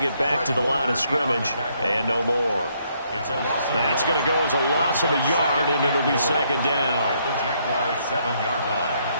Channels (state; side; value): inverted; both; correlation -0.71